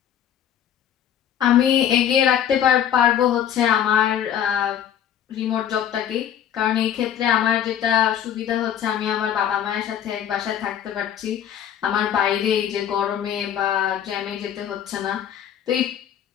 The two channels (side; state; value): right; quieter; 9.8 dB